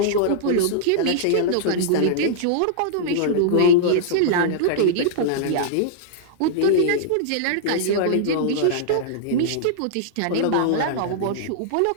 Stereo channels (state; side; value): different; both; correlation -0.02